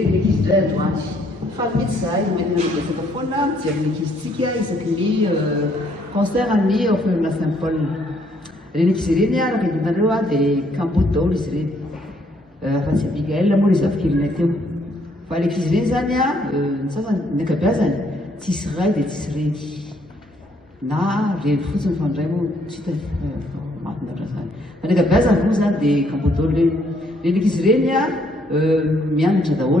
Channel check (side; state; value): both; normal; correlation 0.68